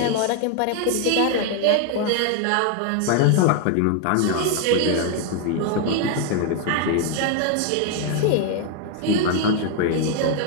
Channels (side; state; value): both; different; correlation 0.01